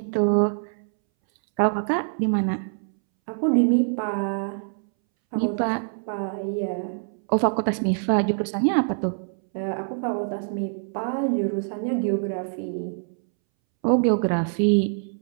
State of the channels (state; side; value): silent; left; 62 dB below the other